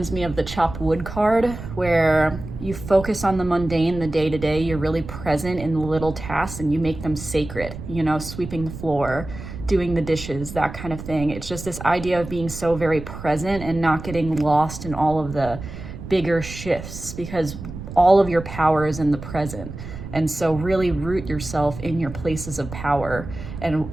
me of the chopped wood card, where you focus on the mundane, the day-to-day, you're really present in the little tasks and you make them sacred, you know, sweeping the floor, doing the dishes, that kind of thing. It's just this idea of being so very present and not getting lost in all of the bigger shifts, because all of your power is in the present. And so really root yourself in your places of power and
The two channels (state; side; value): noise; right; rumble, 11 dB below the sound